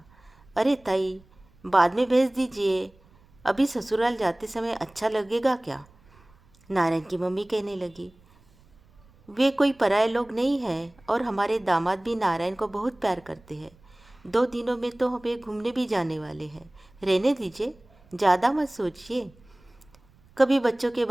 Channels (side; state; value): right; noise; rumble, 29 dB below the sound